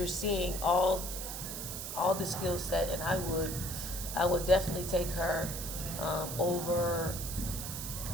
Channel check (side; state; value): right; noise; hiss, 6 dB below the sound